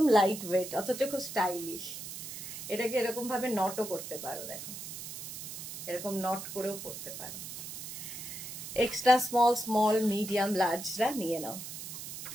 লাইট ওয়েট অথচ খুব স্টাইলিশ। এটাকে এরকম ভাবে নটও করতে পারো, দেখো এরকম নট করেও পড়তে পারো। এক্সট্রা স্মল মিডিয়াম লার্জরা নিয়ে নাও।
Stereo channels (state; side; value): noise; right; hiss, 9 dB below the sound